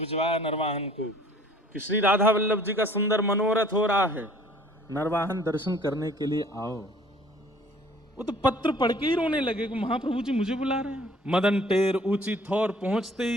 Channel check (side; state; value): both; normal; correlation 0.54